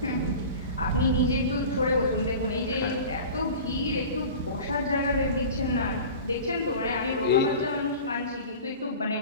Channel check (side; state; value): both; inverted; correlation -0.37